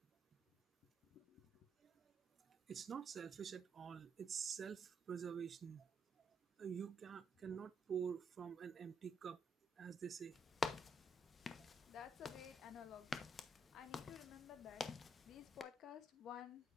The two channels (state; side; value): normal; both; correlation 0.75